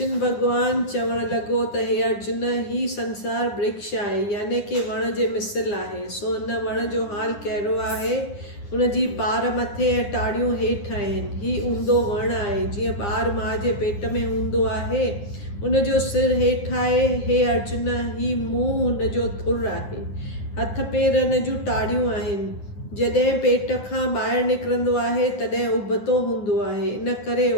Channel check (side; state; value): right; late; 9.8 ms